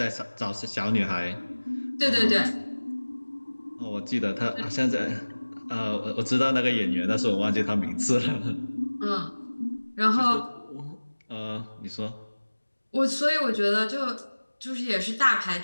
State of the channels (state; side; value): inverted; both; correlation -1.00